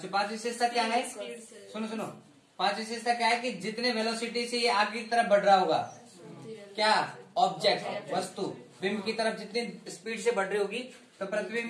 पांच विशेषता क्या है? सुनो, पांच विशेषता क्या है कि जितने वेलोसिटी से ये आगे की तरफ बढ़ रहा होगा, क्या ऑब्जेक्ट वस्तु बिंब की तरफ जितनी स्पीड से बढ़ रही होगी तो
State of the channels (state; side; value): identical; both; correlation 1.00